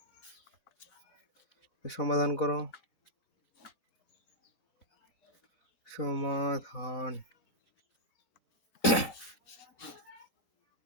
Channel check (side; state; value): right; late; 5.1 ms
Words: সমাধান করো। সমাধান